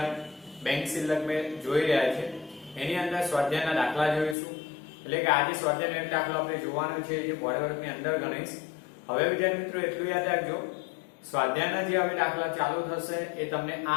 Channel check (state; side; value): drops out; right; at 4.4 s